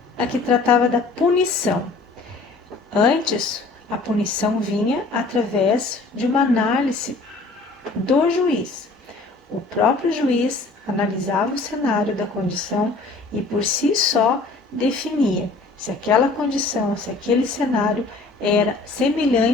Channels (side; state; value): right; quieter; 3.5 dB